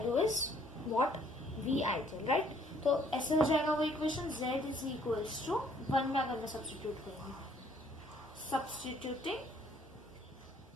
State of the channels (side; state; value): both; normal; correlation 0.62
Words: is what? V ideal, right? तो ऐसे हो जाएगा वो equation z is equals to 1 में अगर मैं सब्स्टिट्यूट करूंगी, सब्स्टिट्यूटिंग